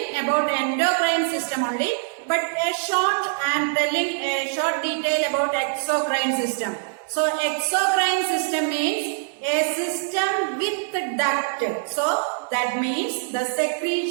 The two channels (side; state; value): left; silent; digital silence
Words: about endocrine system only, but I am telling a short detail about exocrine system. So exocrine system means a system with duct. So that means the